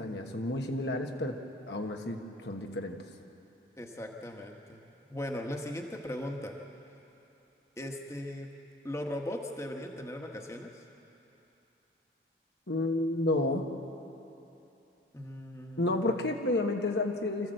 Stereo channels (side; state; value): both; normal; correlation 0.43